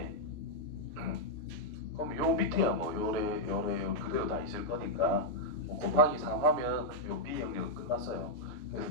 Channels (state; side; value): late; right; 3.0 ms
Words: 그럼 요 밑에야 뭐 요래 그대로 다 있을 거니까 뭐 곱하기 3 하면 요 B 영역은 끝났어요.